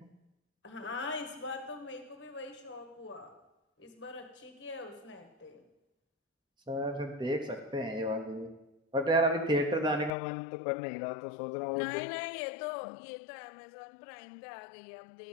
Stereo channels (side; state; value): right; drops out; at 10.1 s